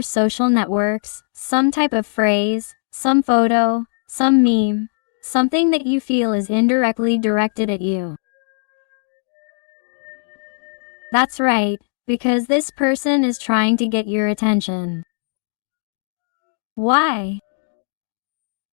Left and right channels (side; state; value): right; silent; digital silence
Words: social networks, some type of phrase, some photo, some meme, something that you feel is indirectly directed at you. That's right, because this person is trying to get your attention. Why?